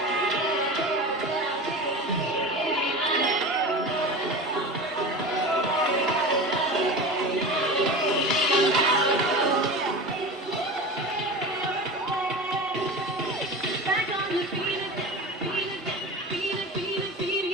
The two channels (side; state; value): both; normal; correlation 0.31